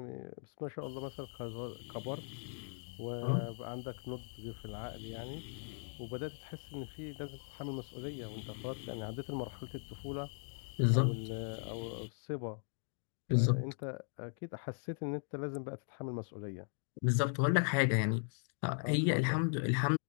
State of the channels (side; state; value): right; silent; 52 dB below the other